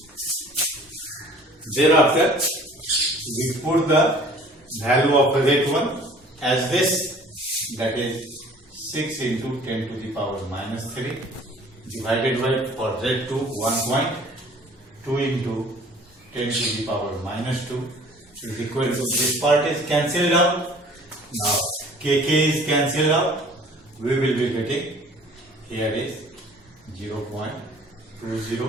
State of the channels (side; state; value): both; normal; correlation 0.50